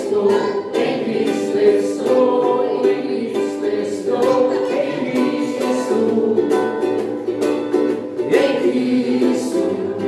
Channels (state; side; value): identical; both; correlation 1.00